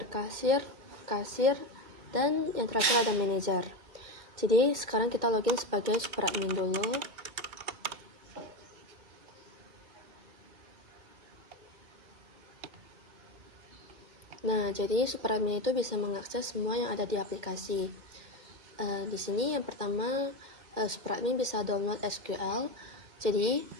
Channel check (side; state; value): left; late; 2.1 ms